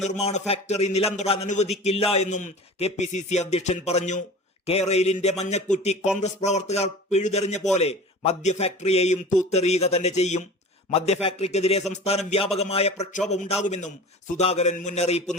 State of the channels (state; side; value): normal; both; correlation 0.38